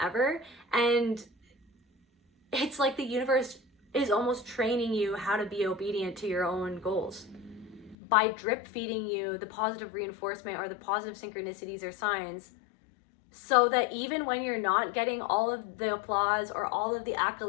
ever. And it's like the universe is almost training you how to be obedient to your own goals by drip feeding you the positive reinforcement, or the positive synchronicities or signs, so that even when you're not getting all of the applause, or all of the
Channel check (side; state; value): right; drops out; at 8.0 s